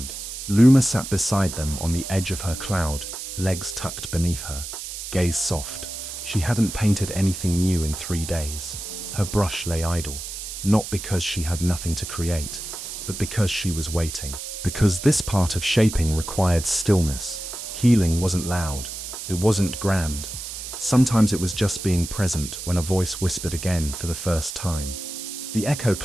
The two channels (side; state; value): right; noise; hiss, 8 dB below the sound